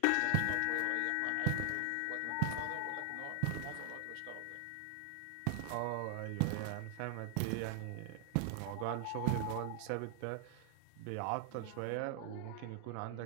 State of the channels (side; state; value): both; different; correlation 0.00